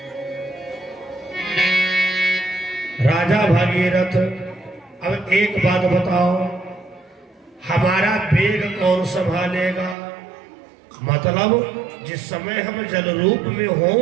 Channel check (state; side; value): drops out; left; at 10.0 s